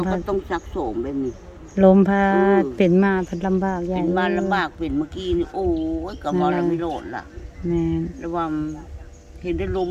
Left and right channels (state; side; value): identical; both; correlation 1.00